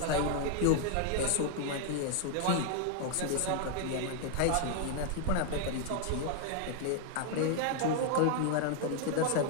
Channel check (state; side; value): different; both; correlation 0.00